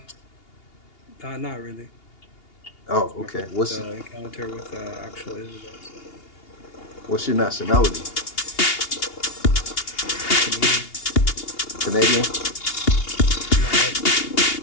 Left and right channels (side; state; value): right; late; 2.8 ms